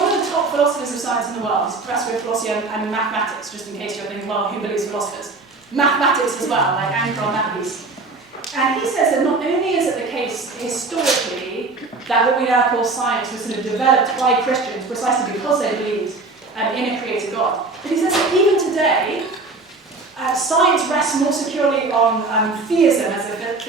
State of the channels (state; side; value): quieter; left; 3.6 dB